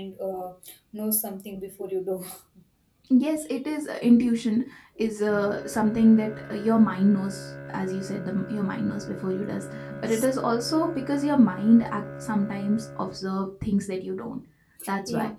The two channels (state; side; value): identical; both; correlation 1.00